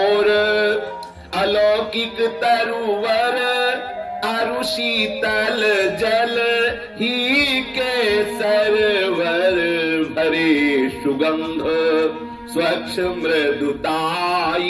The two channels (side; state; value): both; identical; correlation 1.00